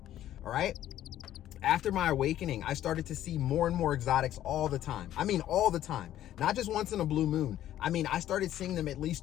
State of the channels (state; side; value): quieter; right; 12.4 dB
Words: All right. After my awakening, I started to see more and more exotics all the time. I mean, all the time, not just once in a blue moon. I mean, I started seeing them at